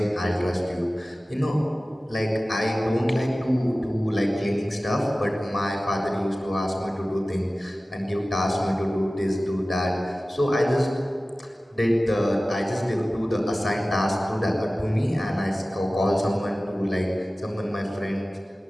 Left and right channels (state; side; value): normal; both; correlation 0.97